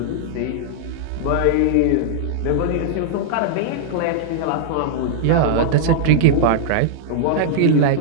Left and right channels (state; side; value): different; both; correlation -0.01